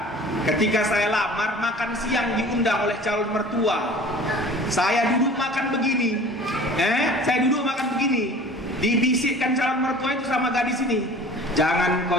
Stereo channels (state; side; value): normal; both; correlation 0.44